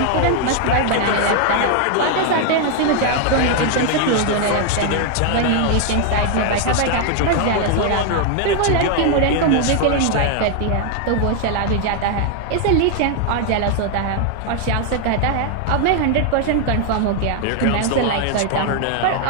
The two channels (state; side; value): different; both; correlation 0.00